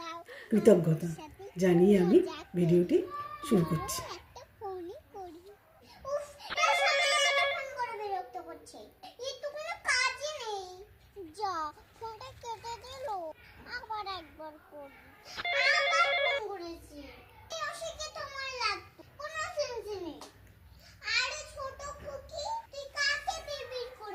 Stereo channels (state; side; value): identical; both; correlation 1.00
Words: কৃতজ্ঞতা জানিয়ে আমি ভিডিওটি শুরু করছি। আবার একবার করি আবার ফোন করেছি অশিকে তোমার লাগতো কোনো সেন্স নেই। আরে ছোট খুকি তুই কাকে বিড়বিড়